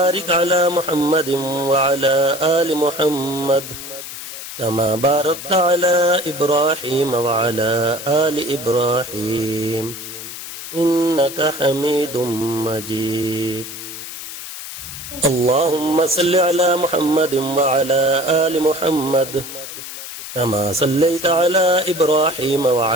على محمد وعلى آل محمد كما باركت على إبراهيم وعلى آل إبراهيم إنك حميد مجيد. اللهم صل على محمد وعلى آل محمد كما صليت على إبراهيم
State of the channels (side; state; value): left; noise; hiss, 10 dB below the sound